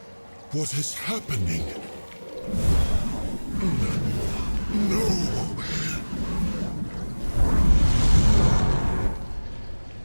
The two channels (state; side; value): inverted; both; correlation -1.00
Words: What is happening? No!